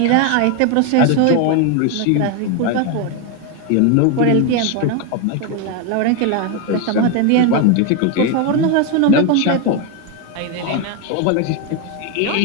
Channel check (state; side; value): different; both; correlation 0.02